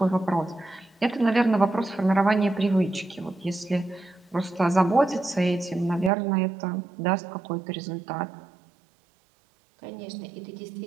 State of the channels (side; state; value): left; drops out; at 6.1 s